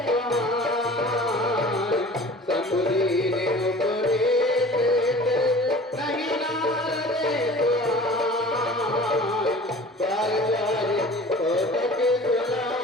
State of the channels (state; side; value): normal; both; correlation 0.43